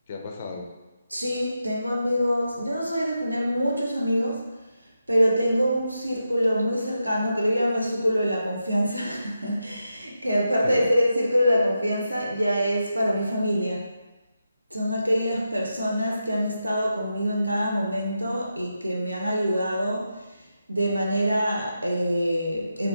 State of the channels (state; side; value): inverted; both; correlation -0.87